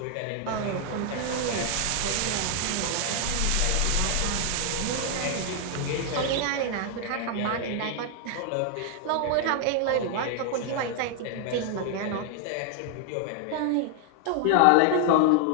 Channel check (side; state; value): both; different; correlation 0.00